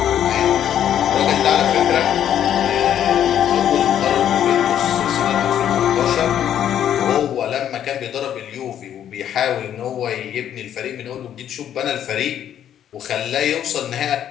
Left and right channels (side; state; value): right; quieter; 10.2 dB